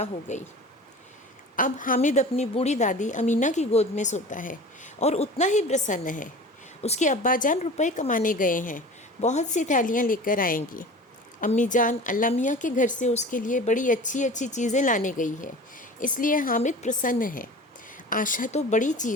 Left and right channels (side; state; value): both; normal; correlation 0.38